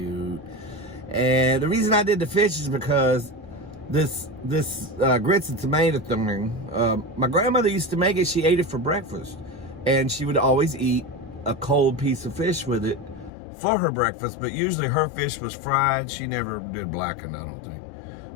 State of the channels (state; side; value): drops out; right; at 13.3 s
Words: And the reason I did the fish is because this grits and tomato thing, my grandmother used to make it. She ate it for breakfast, and she would always eat a cold piece of fish with it for her breakfast. But usually her fish was fried. She never did blackened, I don't think.